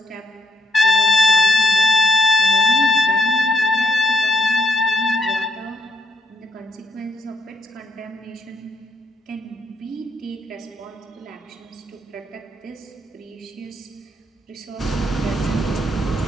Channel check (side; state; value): both; normal; correlation 0.75